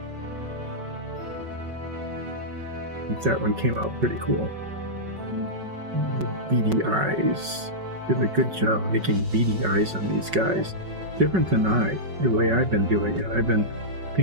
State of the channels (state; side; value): late; left; 5.3 ms